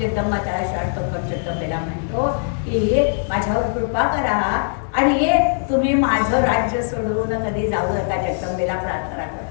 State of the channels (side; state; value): right; silent; digital silence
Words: त्याला शाळतो पण जगदंबेला म्हणतो की माझ्यावर कृपा करा आणि तुम्ही माझं राज्य सोडून कधी जाऊ नका. जगदंबेला प्रार्थना